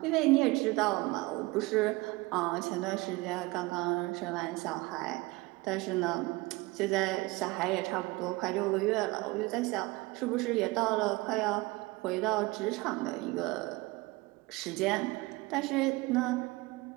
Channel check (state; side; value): quieter; left; 22.5 dB